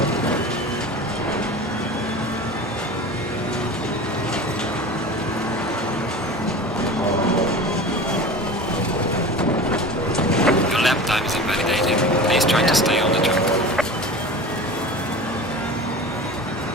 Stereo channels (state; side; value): normal; both; correlation 0.35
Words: trying to stay on the track.